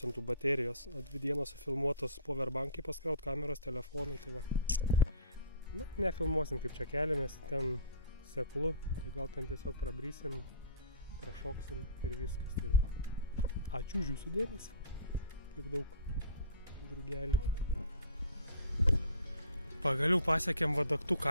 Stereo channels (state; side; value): inverted; both; correlation -0.43